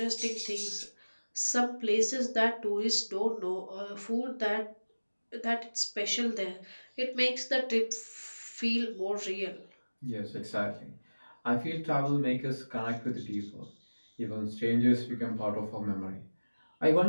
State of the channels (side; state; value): both; inverted; correlation -1.00